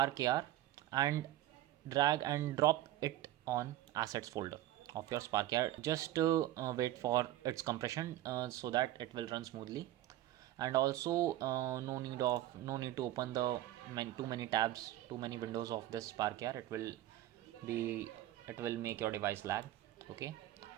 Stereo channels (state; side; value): quieter; left; 14.1 dB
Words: AR and drag and drop it on assets folder of your Spark AR. Just wait for its compression so that it will run smoothly. And also no need to open the too many tabs, too many windows of this Spark AR. It will make your device lag. Okay,